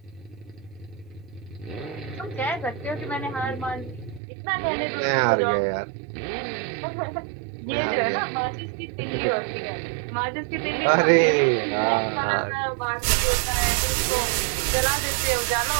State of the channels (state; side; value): drops out; left; at 4.2 s